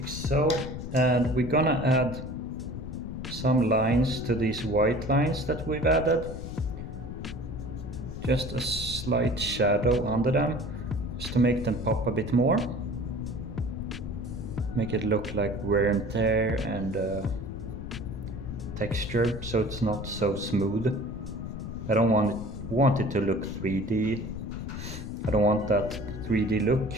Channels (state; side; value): noise; left; rumble, 8 dB below the sound